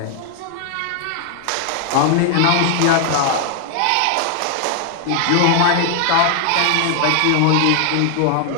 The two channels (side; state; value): both; different; correlation 0.00